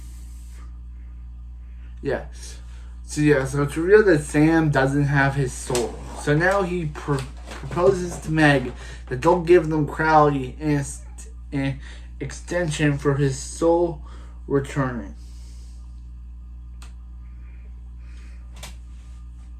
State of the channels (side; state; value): both; identical; correlation 1.00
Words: Yeah. So it's revealed that Sam doesn't have his soul. So now he proposes to Meg that they'll give them Crowley an extension for his soul returning.